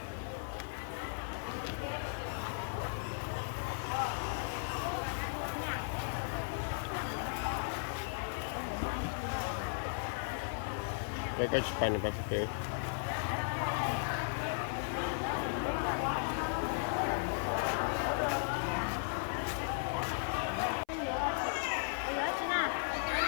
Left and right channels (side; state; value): right; silent; 54 dB below the other